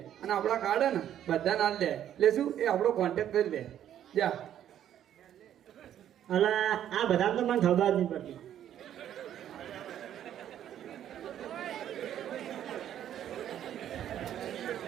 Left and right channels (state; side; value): quieter; left; 10.7 dB